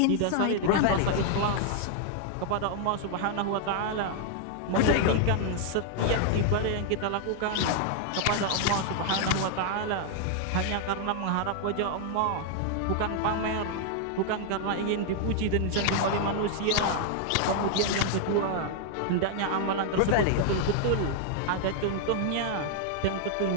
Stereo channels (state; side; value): different; both; correlation 0.00